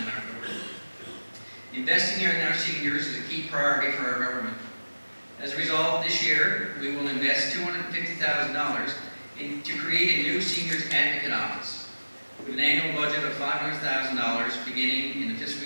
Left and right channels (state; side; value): inverted; both; correlation -1.00